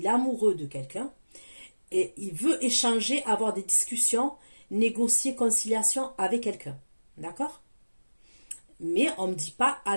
est amoureux de quelqu'un, et il veut échanger, avoir des discussions, négocier, conciliation avec quelqu'un. D'accord? Mais on ne me dit pas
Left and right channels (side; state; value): both; inverted; correlation -1.00